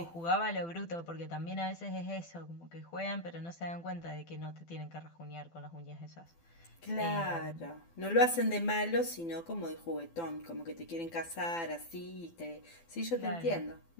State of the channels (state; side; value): late; right; 12 ms